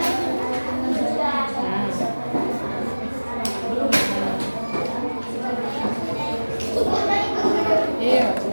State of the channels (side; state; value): both; inverted; correlation -1.00